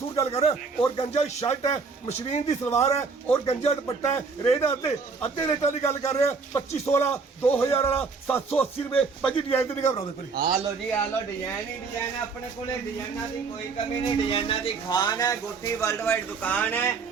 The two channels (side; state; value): left; quieter; 4.7 dB